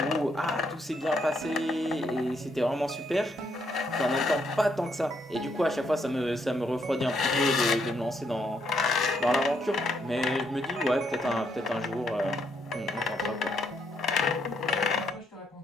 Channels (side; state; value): both; normal; correlation 0.75